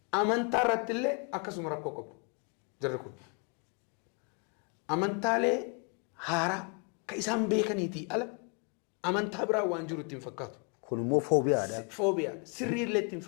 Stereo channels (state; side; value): quieter; right; 36.3 dB